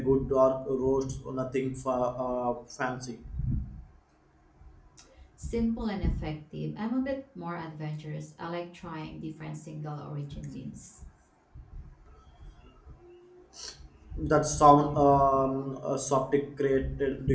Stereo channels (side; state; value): both; identical; correlation 1.00